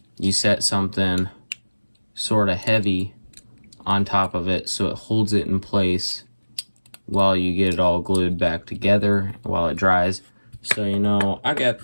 you set something sort of heavy on top of it so it holds it in place while you get it all glued back together while it dries. So you know, I got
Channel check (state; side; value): inverted; both; correlation -1.00